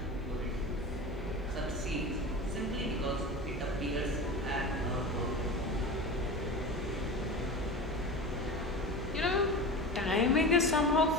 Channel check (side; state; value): both; normal; correlation 0.29